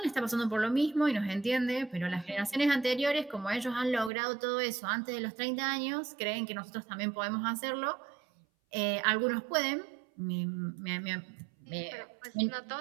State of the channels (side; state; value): left; drops out; at 4.1 s